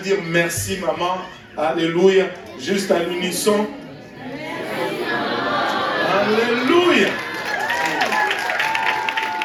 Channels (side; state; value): both; identical; correlation 1.00